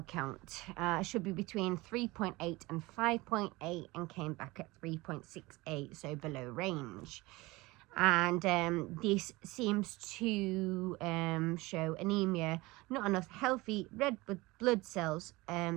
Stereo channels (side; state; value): left; quieter; 21.7 dB